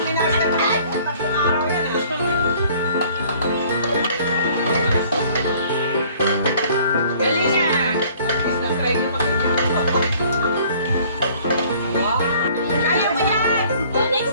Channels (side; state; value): both; inverted; correlation -0.55